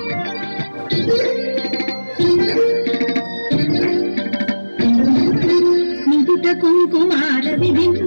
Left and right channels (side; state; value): both; inverted; correlation -1.00